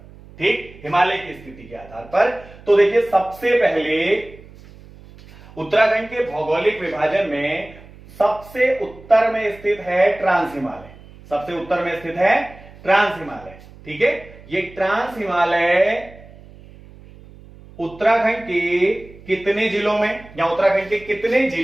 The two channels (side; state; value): right; noise; hum, 21 dB below the sound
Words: ठीक, हिमालय की स्थिति के आधार पर। तो देखिए सबसे पहले उत्तराखंड के भौगोलिक विभाजन में सबसे उत्तर में स्थित है ट्रांस हिमालय। सबसे उत्तर में स्थित है ट्रांस हिमालय। ठीक है, ये ट्रांस हिमालय उत्तराखंड के कितने जिलों में या उत्तराखंड के कितने